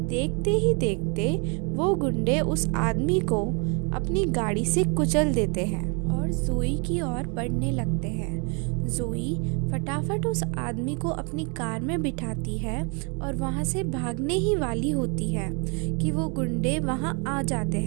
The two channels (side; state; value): left; quieter; 34.9 dB